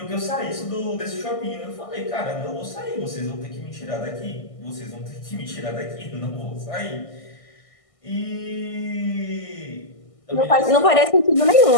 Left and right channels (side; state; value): right; late; 1.6 ms